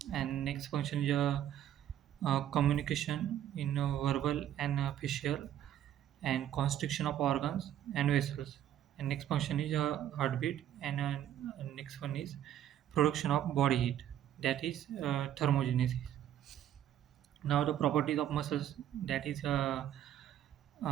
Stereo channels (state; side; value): quieter; left; 11.1 dB